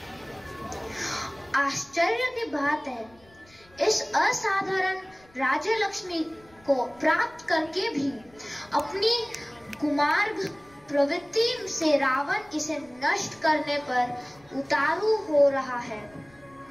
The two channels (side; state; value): left; noise; rumble, 28 dB below the sound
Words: आश्चर्य की बात है, इस असाधारण राज्य लक्ष्मी को प्राप्त करके भी अपनी कुमार्ग प्रवृत्ति से रावण इसे नष्ट करने पर उतारू हो रहा है।